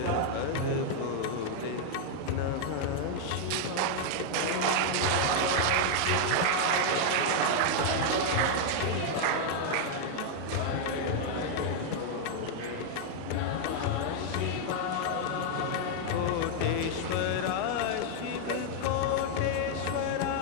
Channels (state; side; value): different; both; correlation 0.00